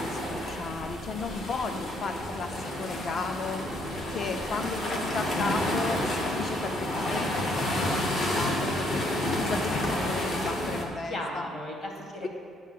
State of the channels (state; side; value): normal; both; correlation 0.69